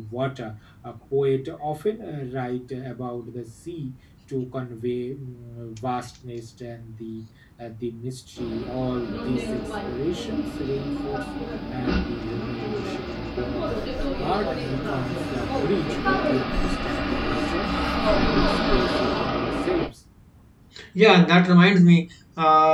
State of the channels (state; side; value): identical; both; correlation 1.00